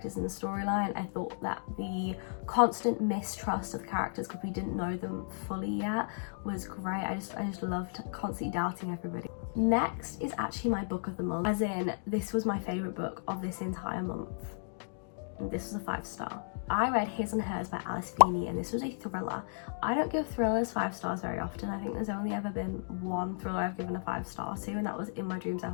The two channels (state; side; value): silent; right; digital silence